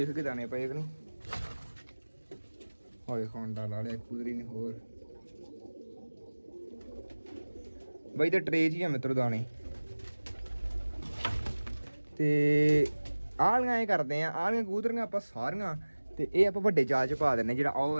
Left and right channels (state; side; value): inverted; both; correlation -1.00